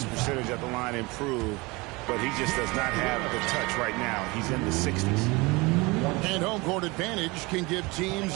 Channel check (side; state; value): left; quieter; 24.4 dB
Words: percentage at the line improve, but he just does not have the touch right now. He's in the 60s. And home court advantage can give